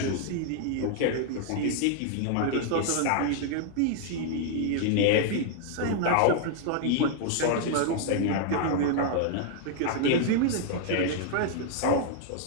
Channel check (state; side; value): different; both; correlation 0.00